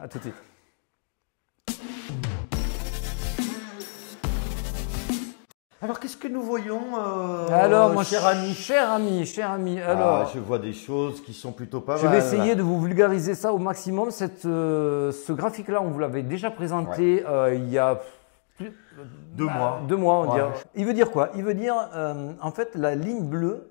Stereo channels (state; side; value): silent; right; digital silence